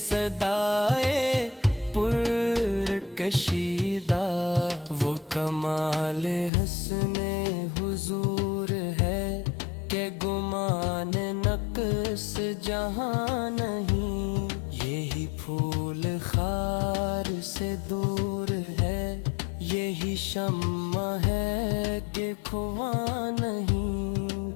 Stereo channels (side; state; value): right; drops out; at 6.5 s